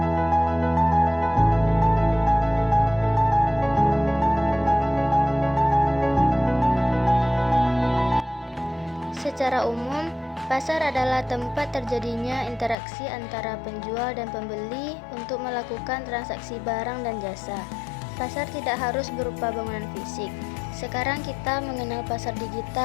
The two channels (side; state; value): right; drops out; at 12.8 s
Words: Secara umum, pasar adalah tempat terjadinya interaksi antara penjual dan pembeli untuk melakukan transaksi barang dan jasa. Pasar tidak harus berupa bangunan fisik. Sekarang kita mengenal pasar